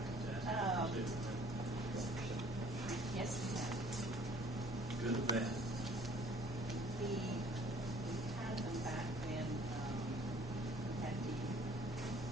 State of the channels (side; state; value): both; normal; correlation 0.56